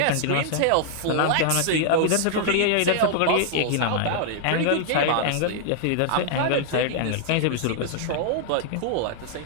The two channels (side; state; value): both; different; correlation 0.00